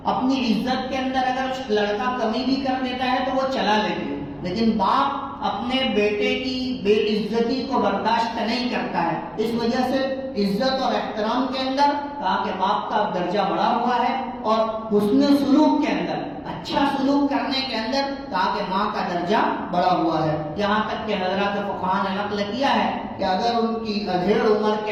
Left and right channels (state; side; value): identical; both; correlation 1.00